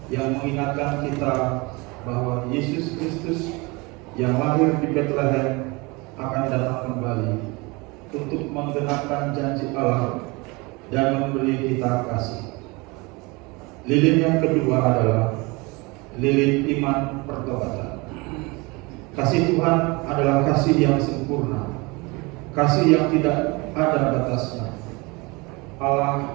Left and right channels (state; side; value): quieter; left; 25.8 dB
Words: yang mengingatkan kita bahwa Yesus Kristus yang lahir di Bethlehem akan datang kembali untuk menggenapkan janji Allah dan memberi kita kasih. Lilin yang kedua adalah lilin iman pertobatan. Kasih Tuhan adalah kasih yang sempurna, kasih yang tidak ada batasnya.